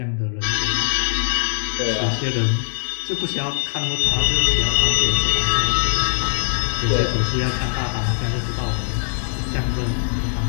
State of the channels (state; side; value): silent; right; digital silence